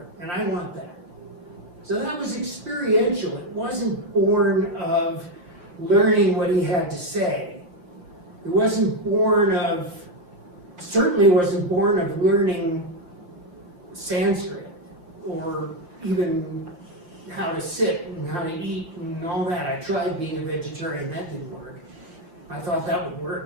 and I want that. So that was experiential. It wasn't born of learning what he had to say. It certainly wasn't born of learning Sanskrit, or even how to sit and how to eat and all that. I tried being a vegetarian, that didn't work. I thought that would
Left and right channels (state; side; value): late; left; 5.8 ms